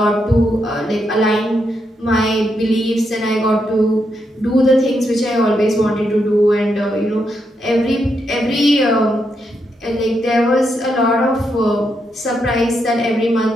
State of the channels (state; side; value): normal; both; correlation 0.81